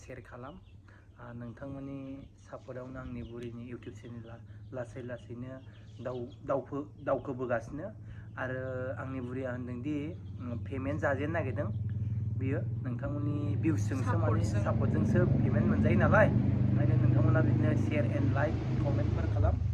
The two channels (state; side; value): identical; both; correlation 1.00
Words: शेयार खालाम नोंथांमोननि सापर्टआवनो आंनि बुरिनि इउटुब चेनेला लासै लासैनो दावखोबोगासिनो आरो आंनि बुरिया होनदोंदि पेमेन्ट जाजेननो नागिरदों बियो नोंथांमोननि भिउसजोंसो माने सापर्टजोंसो पेमेन्ट मोनजायो नालाय ओंखायनो नोंथांमोना बिदिनो शेयार एन्ड लाइक कमेन्टफोर खालाम